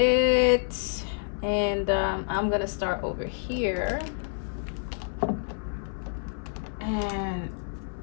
And I'm gonna start over here. And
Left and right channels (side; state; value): right; silent; 59 dB below the other